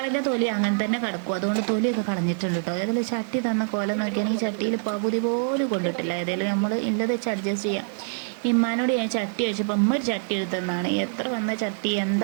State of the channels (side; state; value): left; silent; digital silence